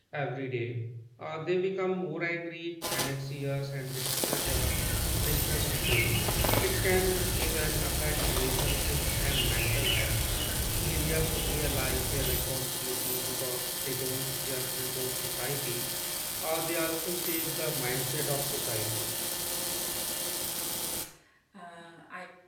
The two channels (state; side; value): identical; both; correlation 1.00